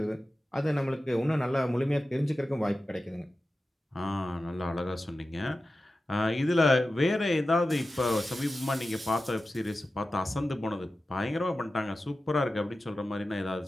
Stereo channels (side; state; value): both; normal; correlation 0.94